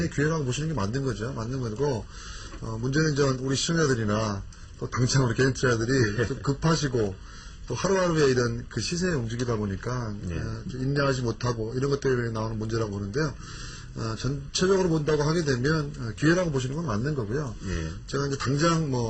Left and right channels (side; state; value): both; identical; correlation 1.00